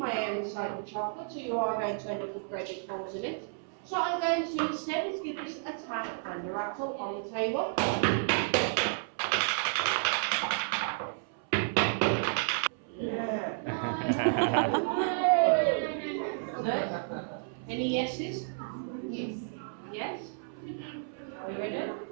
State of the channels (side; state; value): left; silent; 57 dB below the other